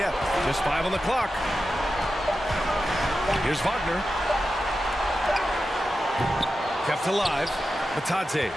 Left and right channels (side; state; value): both; normal; correlation 0.91